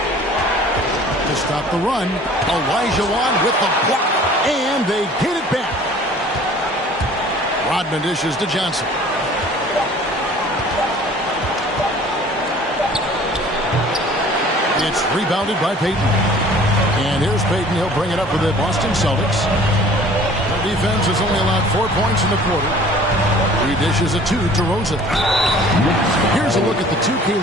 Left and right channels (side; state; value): both; normal; correlation 0.49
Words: To stop the run, Olajuwon with the block, and they get it back. Rodman dishes to Johnson. It's rebounded by Payton. And here's Payton. He'll bring it up for the Boston Celtics. Their defense has only allowed 4 points in the quarter. He dishes a 2 to Rosen. Here's a look at the 2K